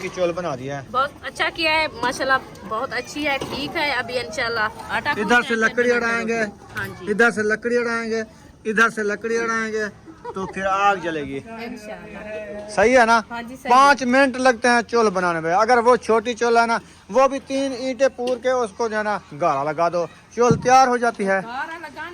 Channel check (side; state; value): both; identical; correlation 1.00